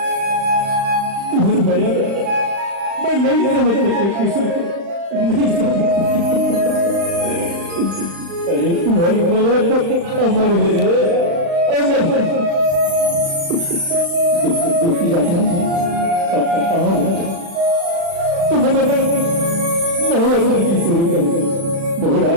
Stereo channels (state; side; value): late; left; 35 ms